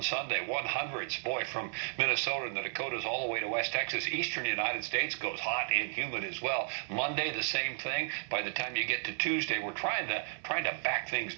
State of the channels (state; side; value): silent; left; 55 dB below the other